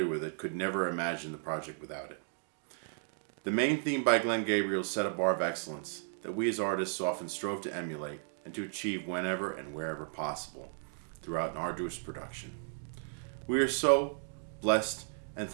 with it could never imagine the project without it. The main theme by Glen Gabriel set a bar of excellence that we as artists often strove to emulate and to achieve whenever and wherever possible throughout an arduous production. We are so blessed and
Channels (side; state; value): left; silent; 55 dB below the other